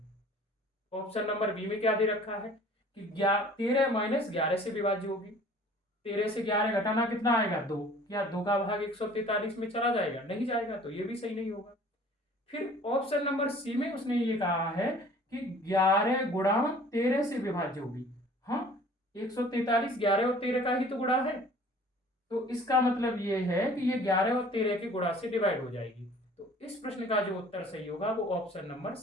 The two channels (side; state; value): both; normal; correlation 0.50